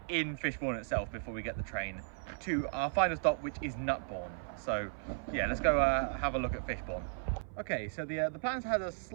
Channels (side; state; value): left; silent; 54 dB below the other